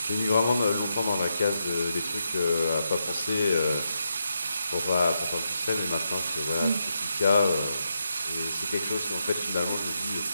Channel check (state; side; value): inverted; both; correlation -0.83